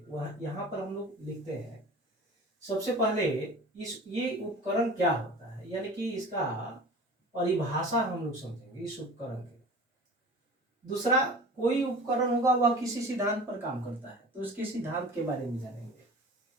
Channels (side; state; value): both; normal; correlation 0.40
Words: वह यहाँ पर हम लोग लिखते हैं। सबसे पहले ये उपकरण क्या होता है, यानी कि इसका परिभाषा हम लोग समझेंगे इस उपकरण की। दूसरा, कोई उपकरण होगा वह किसी सिद्धांत पर काम करता है तो उसके सिद्धांत के बारे में जानेंगे,